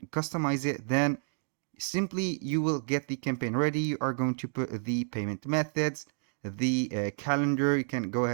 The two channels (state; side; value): silent; left; digital silence